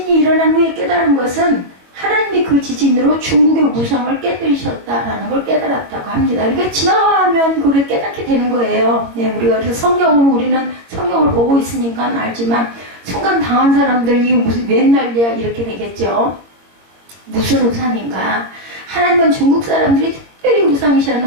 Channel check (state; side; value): late; left; 22 ms